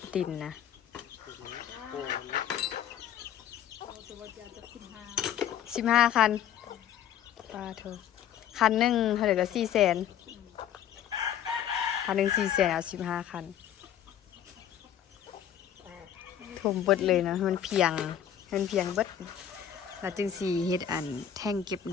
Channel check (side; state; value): right; quieter; 9.8 dB